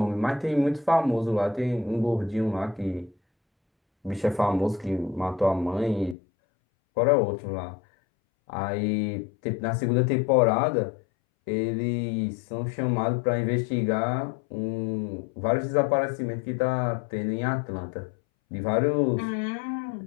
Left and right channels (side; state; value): right; drops out; at 6.2 s